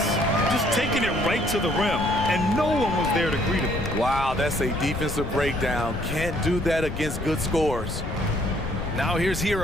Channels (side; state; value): left; noise; rumble, 7 dB below the sound